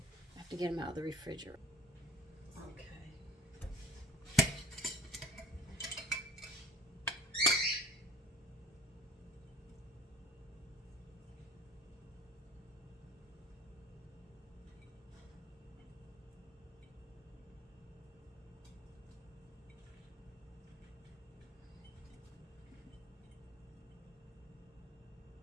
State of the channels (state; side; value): normal; both; correlation 0.47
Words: I have to get them out of the refrigerator. Okay.